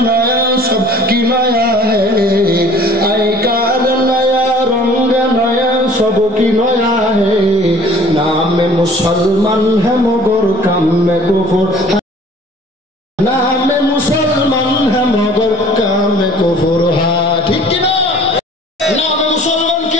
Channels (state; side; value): normal; both; correlation 0.50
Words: নয়া সব কি নয়া হ্যায়, আই কার নয়া রঙ্গ নয়া সব কি নয়া হ্যায়। नाम मुसलमान है मगर काम में कुफर, नाम मुसलमान है मगर काम में कुफर। ঠিক কি না? নাম মুসলমান